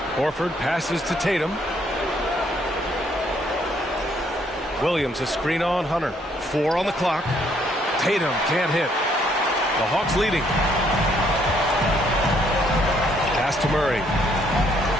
Horford passes to Tatum. Williams a screen on Hunter. 4 on the clock. Tatum can't hit. The Hawks leading. Pass to Murray.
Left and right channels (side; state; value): both; normal; correlation 0.68